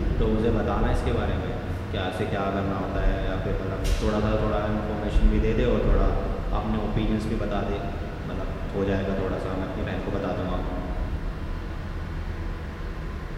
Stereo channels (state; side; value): identical; both; correlation 1.00